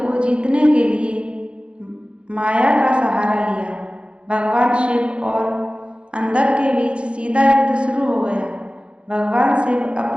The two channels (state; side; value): late; left; 0.058 ms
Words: जीतने के लिए माया का सहारा लिया। भगवान शिव और अंधक के बीच सीधा युद्ध शुरू हो गया। भगवान शिव